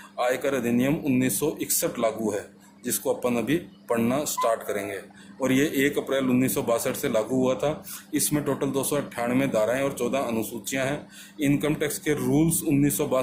आयकर अधिनियम 1961 लागू है, जिसको अपन अभी पढ़ना स्टार्ट करेंगे। और ये 1 अप्रैल 1962 से लागू हुआ था। इसमें टोटल 298 धाराएं और 14 अनुसूचियां हैं। इनकम टैक्स के रूल्स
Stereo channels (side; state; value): both; identical; correlation 1.00